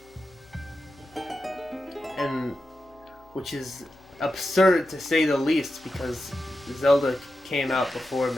And which is absurd to say the least because Zelda came out before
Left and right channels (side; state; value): left; noise; hum, 28 dB below the sound